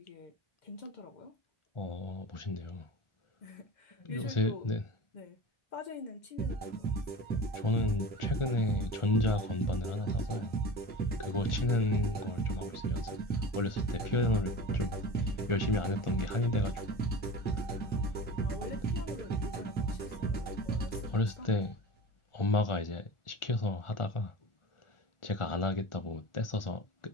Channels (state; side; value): late; right; 1.4 ms